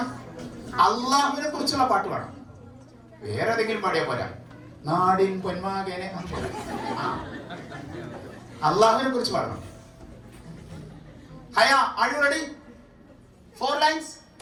അള്ളാഹുവിനെ കുറിച്ചുള്ള പാട്ട് പാടാം. വേറെ ഏതെങ്കിലും പാടിയാ പോരാ. നാടിൻ പൊന്മാകനെ. അള്ളാഹുവിനെ കുറിച്ച് പാടണം. ഹയ, ആർ യു റെഡി? 4 lines.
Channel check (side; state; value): both; identical; correlation 1.00